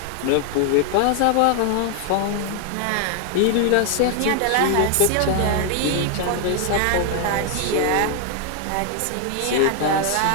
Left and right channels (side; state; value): both; different; correlation 0.00